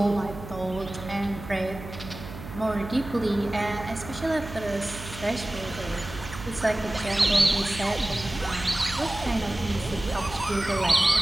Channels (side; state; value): right; noise; hum, 12 dB below the sound